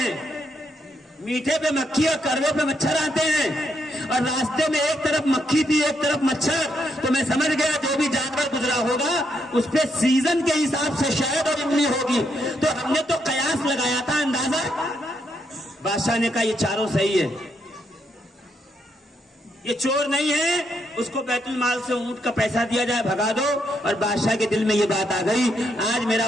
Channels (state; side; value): normal; both; correlation 0.77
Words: میٹھے پہ مکھی اور کڑوے پہ مچھر آتے ہیں، اور راستے میں ایک طرف مکھی تھی ایک طرف مچھر. تو میں سمجھ گیا جو بھی جانور گزرا ہوگا اس پہ سیزن کے حساب سے شہد اور املی ہوگی. تو ہم نے تو قیاس لگایا تھا، اندازہ. بادشاہ نے کہا یہ چاروں صحیح ہے، یہ چور نہیں ہے، اس کو بیت المال سے اونٹ کا پیسہ دیا جائے، بھگا دو. اور بادشاہ کے دل میں یہ بات آ گئی، آج